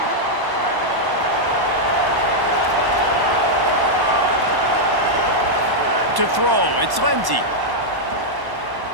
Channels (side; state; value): left; late; 1.1 ms